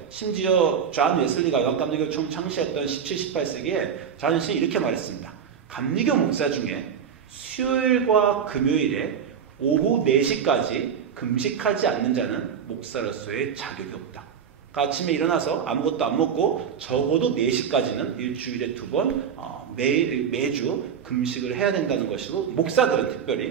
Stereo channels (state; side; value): quieter; left; 7.5 dB